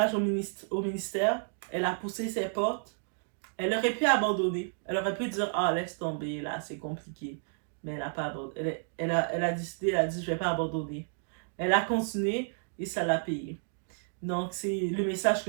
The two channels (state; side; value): silent; left; digital silence